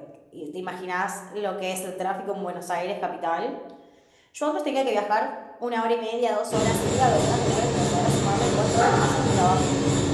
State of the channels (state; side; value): identical; both; correlation 1.00